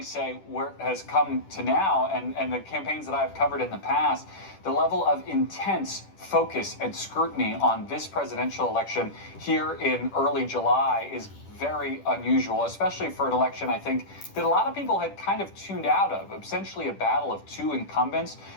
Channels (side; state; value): right; late; 10 ms